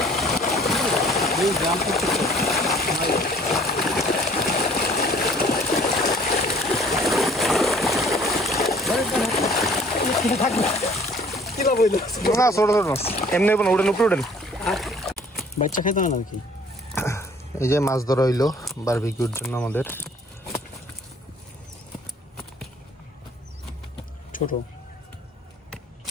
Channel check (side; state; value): both; normal; correlation 0.55